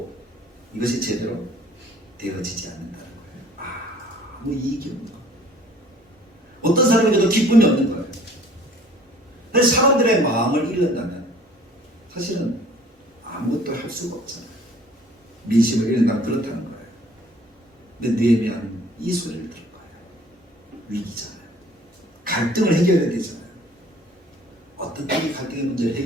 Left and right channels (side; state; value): both; normal; correlation 0.53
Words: 이것이 제대로 되어지지 않는다는 거예요. 아무 이익이 없는 거예요. 어떤 사람에게도 기쁨이 없는 거예요. 그래서 사람들의 마음을 잃는다면 사실은 아무것도 할 수가 없잖아요. 민심을 잃는다면 그렇다는 거예요. 근데 느헤미야는 이 소리를 들은 거예요. 위기잖아요. 갈등을 해결해야 되잖아요. 어떻게 갈등의 문제를